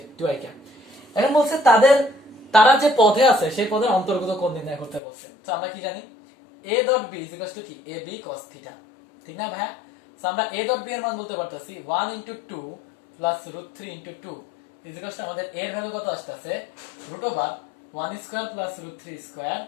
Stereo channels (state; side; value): drops out; right; at 5.0 s